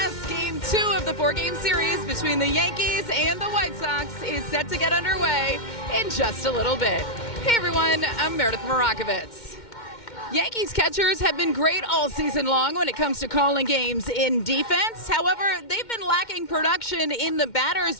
Game 2 of the 4-game series between the Yankees and the White Sox is set to get underway in just a little bit. Hey everyone, I'm Meidroth Morakovitz. Yankees catchers have been great all season long when it comes to calling games in defense. However, they've been lacking production in the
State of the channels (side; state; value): right; late; 2.1 ms